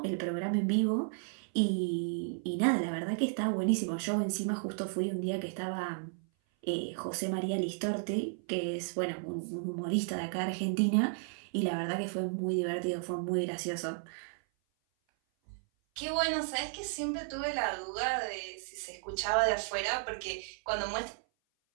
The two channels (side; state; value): left; silent; 55 dB below the other